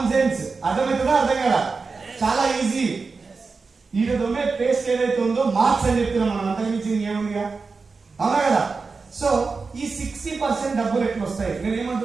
సెన్స్, అర్థమవుతుందా అర్థం కదా, చాలా ఈజీ. వీటి దొమ్మే పేస్ట్ ఏదైతే ఉందో మార్క్స్ అని చెప్తున్నాం మనం, అంతకుమించింది ఏముందిగా, అవునా కదా. సో ఈ 60% డబ్బులు ఎట్లా వస్తాయి, నేను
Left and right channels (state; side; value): quieter; left; 4.4 dB